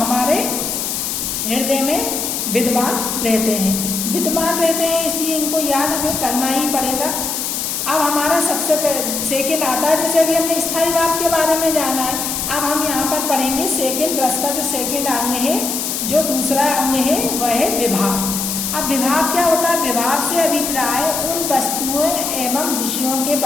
हृदय में विद्यमान रहते हैं, इसलिए इनको याद हमें करना ही पड़ेगा। अब हमारा सबसे सेकेंड आता है, जैसे अभी हमने स्थायी भाव के बारे में जाना है, अब हम यहाँ पर पढ़ेंगे सेकेंड रस का जो सेकेंड अंग है, जो दूसरा अंग है वह है विभाव। अब विभाव क्या होता है, विभाव से अभिप्राय उन वस्तुओं एवं विषयों के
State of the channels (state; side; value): noise; left; hiss, 2 dB below the sound